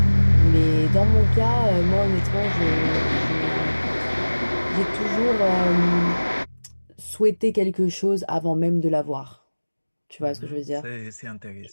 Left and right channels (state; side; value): inverted; both; correlation -1.00